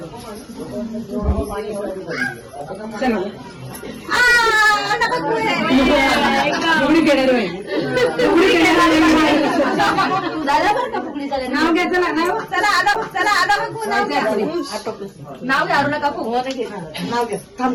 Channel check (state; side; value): identical; both; correlation 1.00